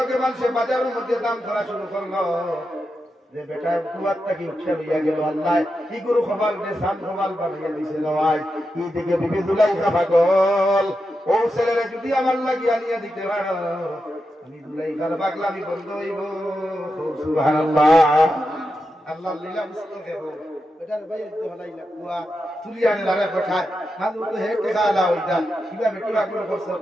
মানুষে বাজারের মধ্যে দাম ধরা শুরু করলো যে বেটা কুয়ারটা কি উঠে লইয়া গেল, আল্লাহ কি গুরু খবর যে সাম খবর বানিয়ে দিছে নয়। এই দিকে বিবি দুলাইখা পাগল, ও ছেলেরে যদি আমার লাগিয়ে আনিয়া দিতে পারো আমি দুলাইখার পাগলামি বন্ধ হইব। সুবহানাল্লাহ। আল্লাহ লীলা বুঝতে দেব বেটার ভাই তো হলাইলা কুয়া তুলি আনে লারে পাঠায় মাঝে তো হে টেকা আলা হইতা কিবা বেটি আগুন করছে।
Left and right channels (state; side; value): normal; both; correlation 0.88